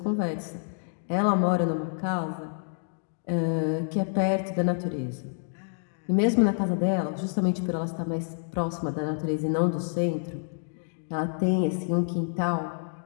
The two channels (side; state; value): right; silent; digital silence